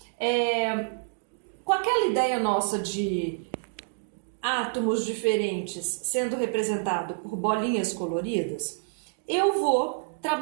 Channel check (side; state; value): left; silent; digital silence